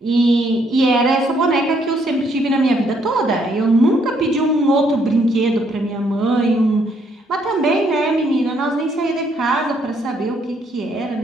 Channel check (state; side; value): normal; both; correlation 0.70